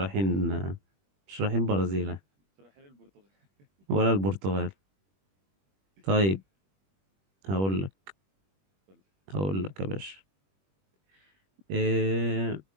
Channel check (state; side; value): late; left; 21 ms